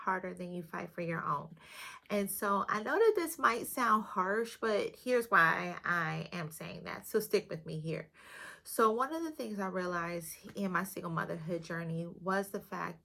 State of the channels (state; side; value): identical; both; correlation 1.00